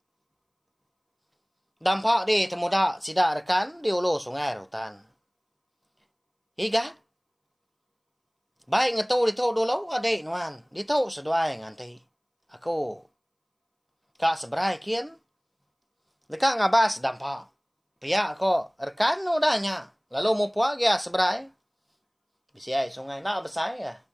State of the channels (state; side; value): identical; both; correlation 1.00